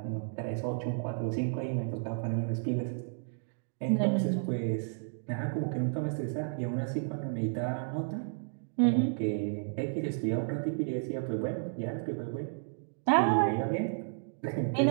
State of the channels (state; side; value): silent; left; digital silence